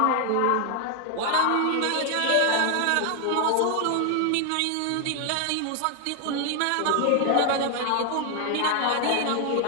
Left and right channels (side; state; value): both; different; correlation 0.00